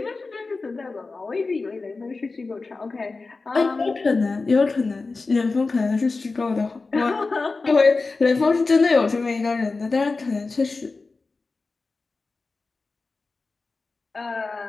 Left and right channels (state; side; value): quieter; right; 3.8 dB